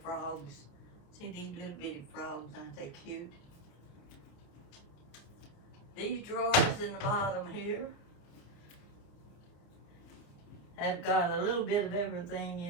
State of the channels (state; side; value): late; right; 29 ms